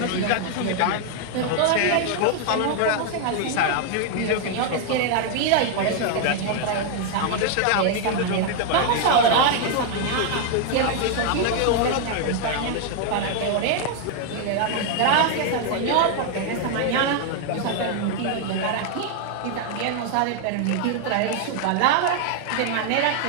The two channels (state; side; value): different; both; correlation 0.00